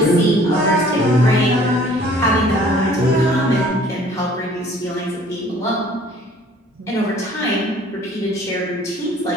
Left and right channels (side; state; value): both; normal; correlation 0.54